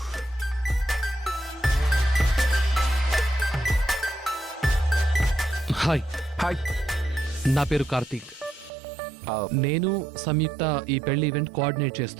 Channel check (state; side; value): drops out; left; at 8.7 s